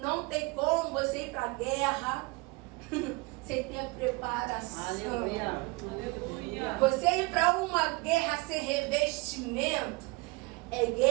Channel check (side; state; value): left; quieter; 25.3 dB